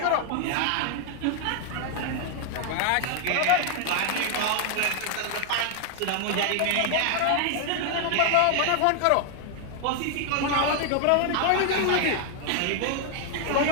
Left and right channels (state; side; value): different; both; correlation 0.00